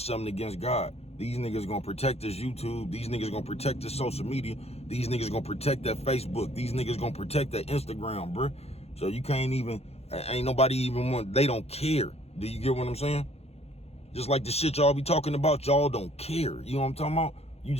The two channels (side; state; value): right; late; 0.30 ms